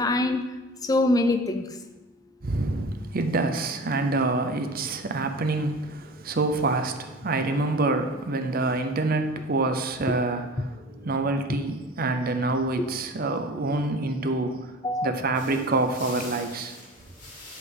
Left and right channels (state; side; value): normal; both; correlation 0.36